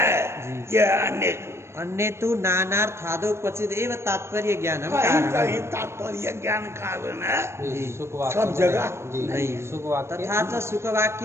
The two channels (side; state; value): left; late; 0.13 ms